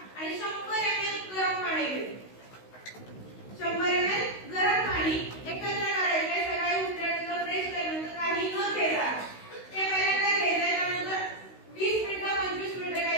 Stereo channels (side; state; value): right; late; 16 ms